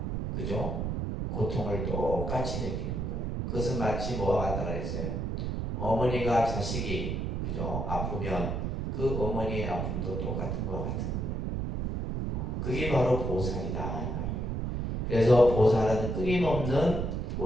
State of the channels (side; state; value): right; noise; rumble, 2 dB below the sound